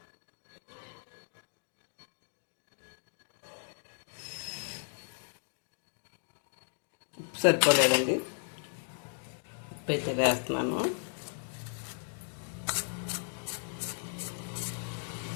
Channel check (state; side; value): silent; right; digital silence